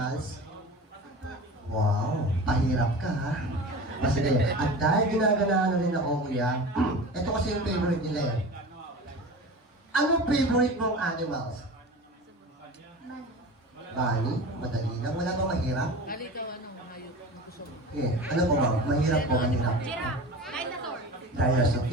Wow, pahirap ka ha. Kasi at dahil ginaganahan na rin ako kuya, ito kasi yung favorite nila eh. Anong favorite mong animals? Bunny? Madali lang, wala ba mahirap? Eh, ano po ba? Mahirap po, mahirap. Giraffe. Dinosaur. Dinosaur.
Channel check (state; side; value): normal; both; correlation 0.34